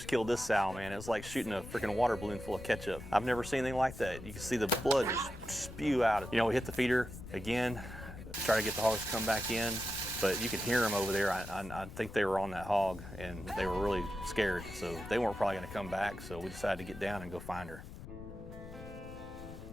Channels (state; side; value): noise; left; rumble, 13 dB below the sound